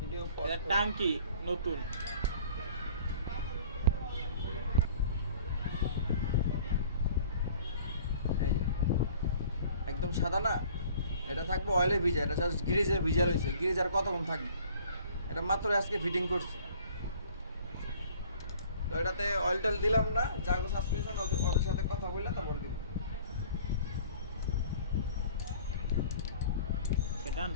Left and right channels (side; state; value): both; inverted; correlation -0.51